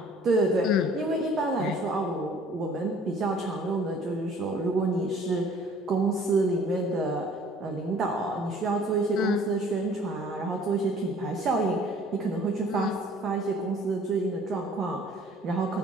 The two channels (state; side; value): normal; both; correlation 0.53